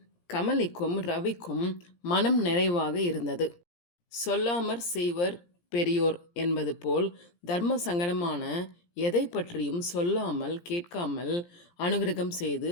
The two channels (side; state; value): right; late; 17 ms